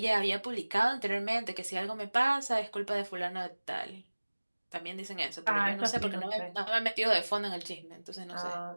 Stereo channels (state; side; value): inverted; both; correlation -1.00